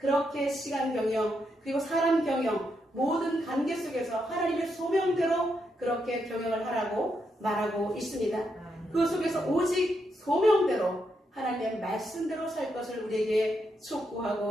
시간 경영 그리고 사람 경영 모든 관계 속에서 하나님의 소명대로 그렇게 경영을 하라고 말하고 있습니다. 그 속에서 오직 소명대로 하나님의 말씀대로 살 것을 우리에게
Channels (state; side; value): normal; both; correlation 0.81